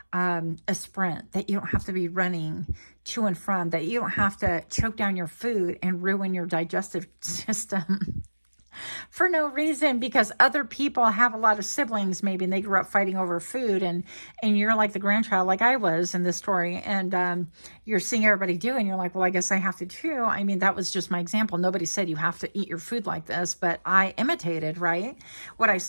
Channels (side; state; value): both; inverted; correlation -1.00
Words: a sprint, that you don't have to be running to and from, that you don't have to choke down your food and ruin your digestive system for no reason, because other people have a lot of siblings maybe, and they grew up fighting over food, and you're like the grandchild, like I was in this story, and you're seeing everybody do, and you're like, well, I guess I have to too. I mean, that was just my example. Nobody said you have to eat your food like this, but I imitated, right, what I